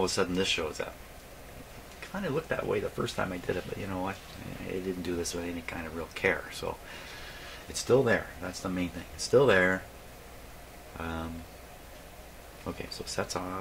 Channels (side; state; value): both; identical; correlation 1.00